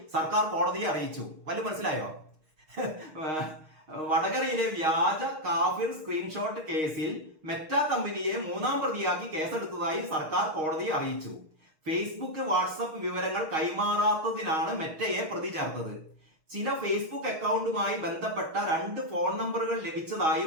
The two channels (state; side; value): late; left; 6.4 ms